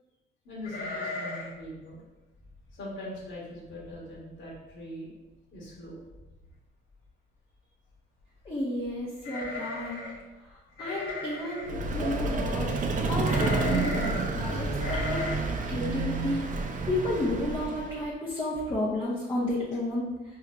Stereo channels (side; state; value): both; normal; correlation 0.50